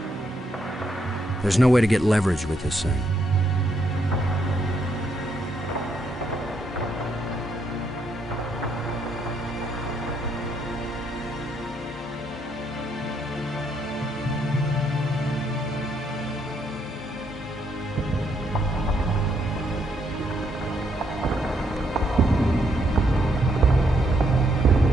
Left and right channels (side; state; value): both; normal; correlation 0.75